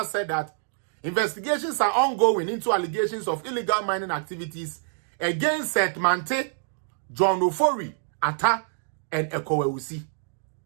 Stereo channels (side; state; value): left; silent; digital silence